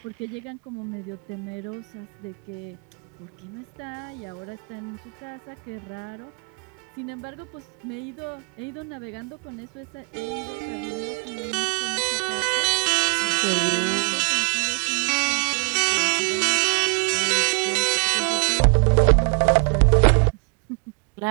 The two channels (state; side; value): quieter; left; 39.1 dB